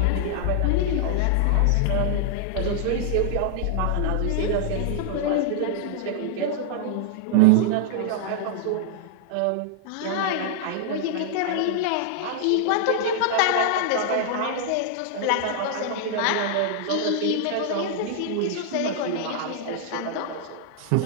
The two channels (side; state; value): both; different; correlation -0.01